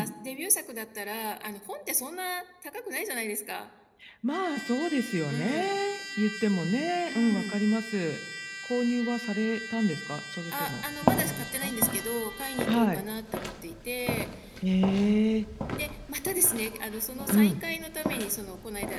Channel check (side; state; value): both; identical; correlation 1.00